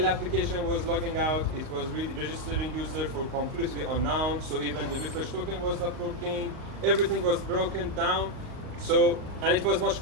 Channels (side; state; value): left; late; 38 ms